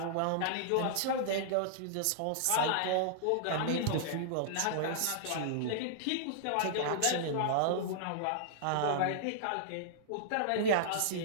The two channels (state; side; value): different; both; correlation -0.01